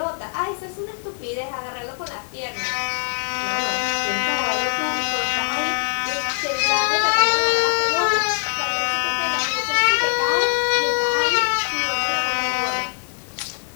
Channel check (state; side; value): silent; right; 60 dB below the other